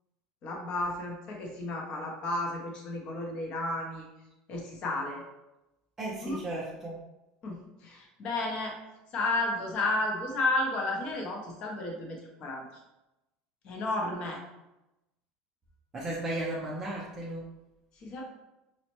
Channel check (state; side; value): normal; both; correlation 0.45